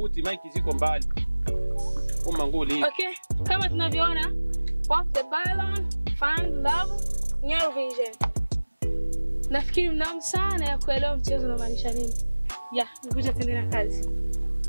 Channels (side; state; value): both; inverted; correlation -1.00